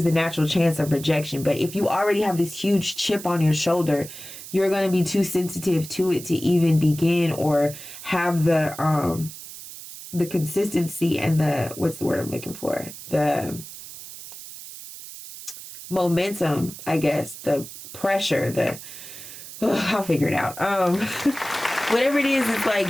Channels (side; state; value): right; noise; hiss, 13 dB below the sound